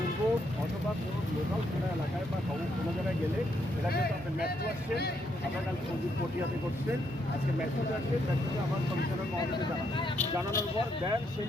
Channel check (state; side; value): normal; both; correlation 0.75